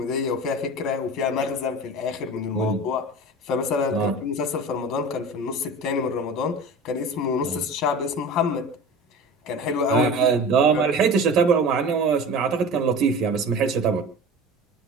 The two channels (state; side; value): normal; both; correlation 0.34